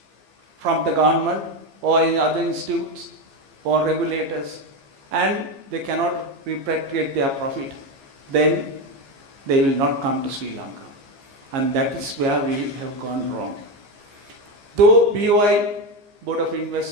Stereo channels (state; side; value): late; left; 15 ms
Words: from the government or in other institutes or regulators, and they cannot repatriate their profit, then they will not come to Sri Lanka. And that is where we have gone wrong. Though BOI, Board of